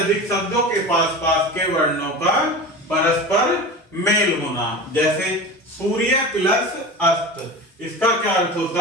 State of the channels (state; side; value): normal; both; correlation 0.31